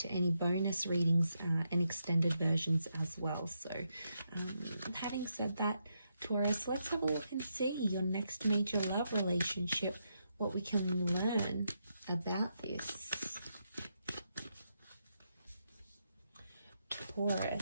any bonus readings and extended versions as well. So having said that, Taurus, let's have a look and see your next major love relationship, what we can learn about this.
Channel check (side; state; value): both; inverted; correlation -0.82